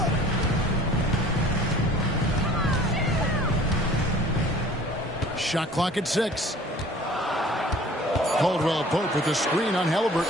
Shot clock at 6. Caldwell Pope with the screen on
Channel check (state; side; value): normal; both; correlation 0.49